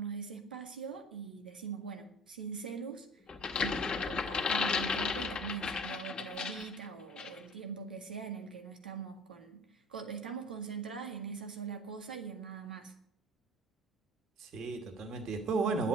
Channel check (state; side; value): normal; both; correlation 0.44